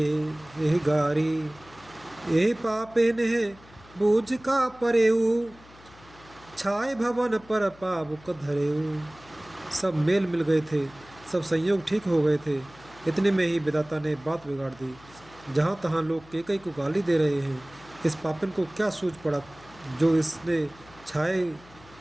गारी एहि पापे नेह बूझ का परेऊ छाए भवन पर पावुक धरेऊ। सब मेल मिल गए थे, सब संयोग ठीक हो गए थे। इतने में ही विधाता ने बात बिगाड़ दी। जहाँ तहाँ लोग केकई को गाली दे रहे हैं। इस पापिन को क्या सूझ पड़ा जो इसने छाए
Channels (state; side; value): noise; left; hum, 24 dB below the sound